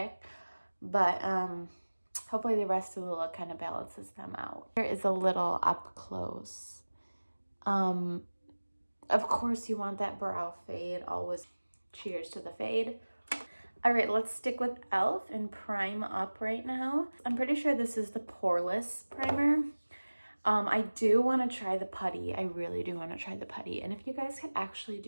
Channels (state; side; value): inverted; both; correlation -1.00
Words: but hopefully the rest of the look kind of balances them out. Here is a little up close. Of course you want that brow fade, always cheers to the fade. All right, let's stick with e.l.f. and prime up right now. I'm pretty sure this is the poreless primer. I do want to try the putty. I really do want to try the putty. And if you guys could actually